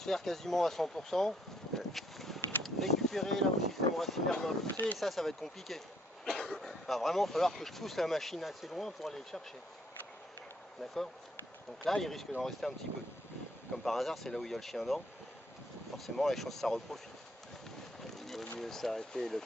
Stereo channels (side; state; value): both; normal; correlation 0.67